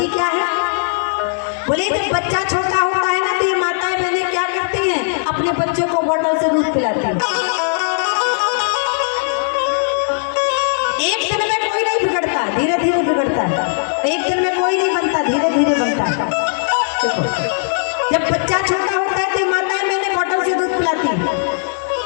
क्या है। बोले जब बच्चा छोटा होता है ना तो ये माताएं बहनें क्या करती हैं? अपने बच्चे को बोतल से दूध पिलाती हैं। एक दिन में कोई नहीं बिगड़ता, धीरे धीरे बिगड़ता है। एक दिन में कोई नहीं बनता, धीरे धीरे बनता है। देखो जब बच्चा छोटा होता है तो माताएं मैंने बोतल से दूध पिलाती है।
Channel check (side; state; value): right; silent; 68 dB below the other